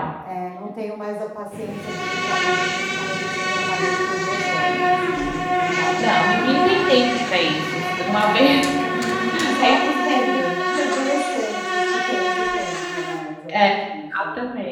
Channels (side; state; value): both; identical; correlation 1.00